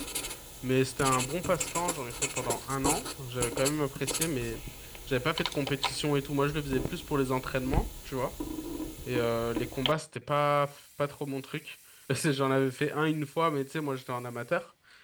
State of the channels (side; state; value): both; identical; correlation 1.00